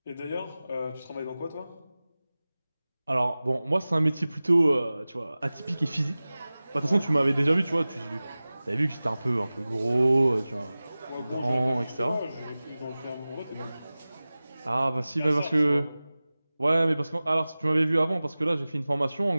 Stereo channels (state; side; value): inverted; both; correlation -0.98